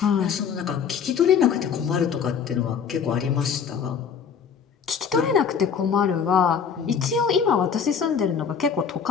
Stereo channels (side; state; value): right; quieter; 6.9 dB